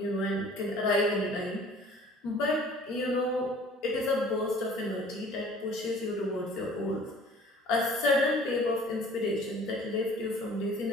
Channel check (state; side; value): normal; both; correlation 0.50